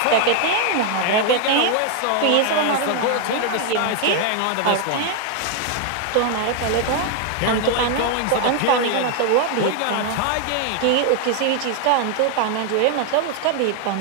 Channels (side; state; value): both; different; correlation 0.00